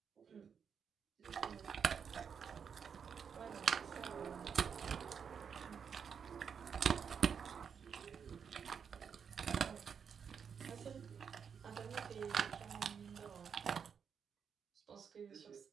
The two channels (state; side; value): quieter; left; 6.9 dB